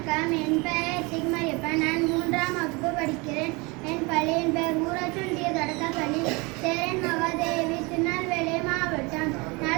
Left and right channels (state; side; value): quieter; left; 26.9 dB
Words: வணக்கம். என் பெயர் சிக்மரியப்பன். நான் 3ஆம் வகுப்பு படிக்கிறேன். என் பள்ளியின் பெயர் ஊராட்சி ஒன்றிய தொடக்கப்பள்ளி, சேரன் மகாதேவி, திருநெல்வேலி மாவட்டம்.